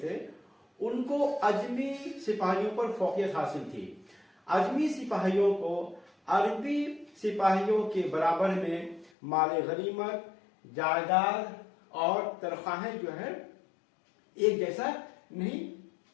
تھے ان کو اجمی سپاہیوں پر فوقیت حاصل تھی. اجمی سپاہیوں کو عربی سپاہیوں کے برابر میں مال غنیمت، جائیداد اور تنخواہیں جو ہے ایک جیسا نہیں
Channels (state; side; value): drops out; right; at 9.1 s